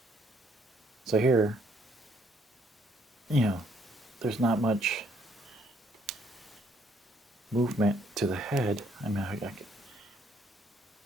So here, there's not much movement to the head. I mean,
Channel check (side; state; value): both; normal; correlation 0.67